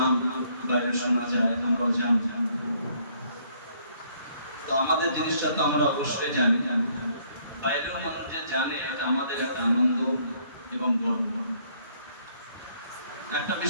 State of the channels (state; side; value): inverted; both; correlation -0.65